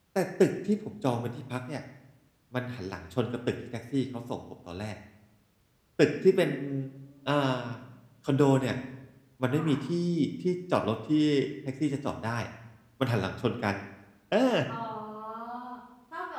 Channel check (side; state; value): both; identical; correlation 1.00